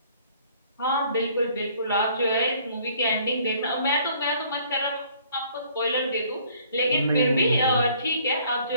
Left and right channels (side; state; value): both; inverted; correlation -0.59